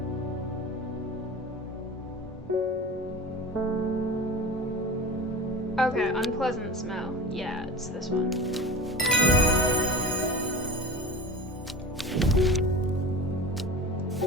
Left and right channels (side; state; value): both; normal; correlation 0.33